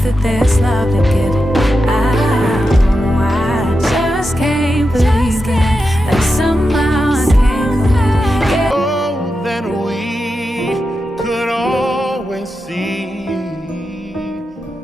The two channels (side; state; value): both; normal; correlation 0.89